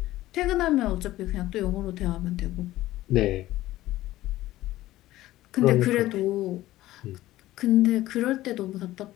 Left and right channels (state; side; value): quieter; right; 15.8 dB